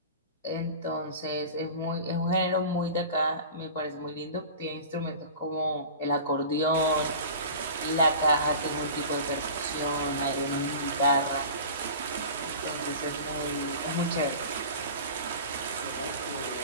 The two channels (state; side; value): inverted; both; correlation -0.37